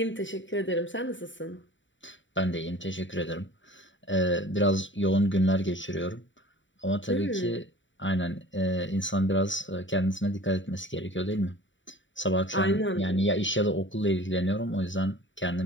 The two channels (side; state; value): right; late; 0.55 ms